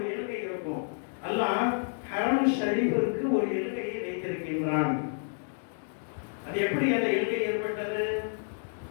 எல்கை இருக்கும். அல்லாஹ் ஹரம் ஷரீஃபிற்கு ஒரு எல்கையை வைத்திருக்கின்றான். அது எப்படி அந்த எல்கை ஏற்பட்டது?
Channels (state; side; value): silent; right; digital silence